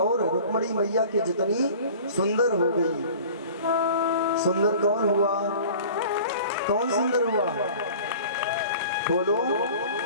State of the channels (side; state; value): both; inverted; correlation -0.43